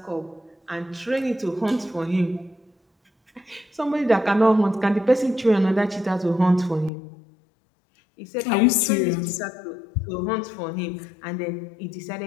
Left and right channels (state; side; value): drops out; right; at 6.9 s